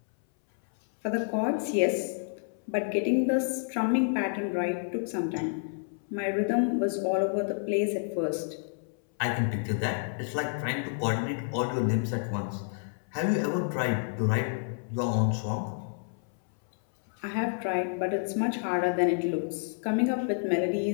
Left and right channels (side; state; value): right; silent; 58 dB below the other